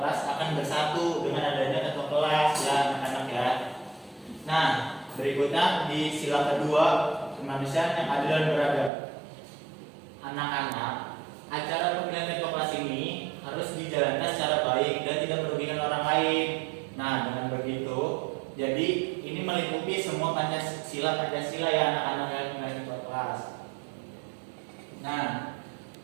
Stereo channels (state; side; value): drops out; left; at 8.9 s